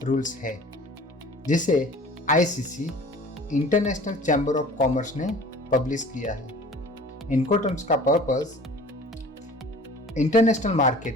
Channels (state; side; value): normal; both; correlation 0.45